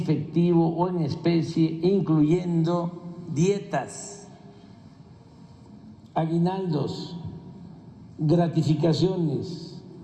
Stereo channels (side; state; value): both; identical; correlation 1.00